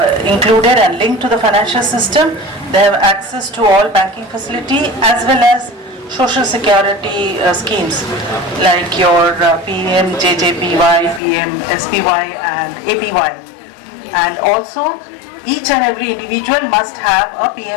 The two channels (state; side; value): drops out; right; at 11.2 s